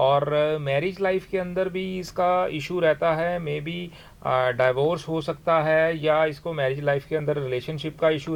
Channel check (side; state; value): both; identical; correlation 1.00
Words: मैरिज लाइफ के अंदर भी इसका इशू रहता है, मे बी डाइवोर्स हो सकता है, या इसको मैरिज लाइफ के अंदर रिलेशनशिप का इशू